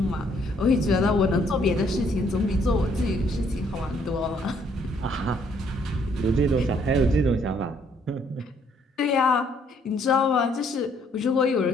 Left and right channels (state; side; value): normal; both; correlation 0.67